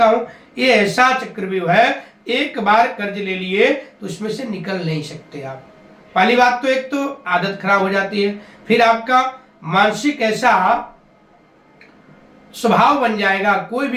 हूं, ये ऐसा चक्रव्यूह है, एक बार कर्ज ले लिए तो उसमें से निकल नहीं सकते आप। पहली बात तो एक तो आदत खराब हो जाती है, फिर आपका मानसिक ऐसा स्वभाव बन जाएगा, कोई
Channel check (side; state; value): both; identical; correlation 1.00